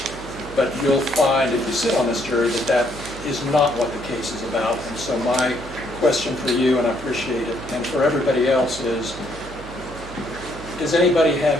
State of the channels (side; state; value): right; noise; hum, 15 dB below the sound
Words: But you'll find, if you sit on this jury, that that is not what the case is about. And so my question for you, and I appreciate it, and for everybody else is, does anybody have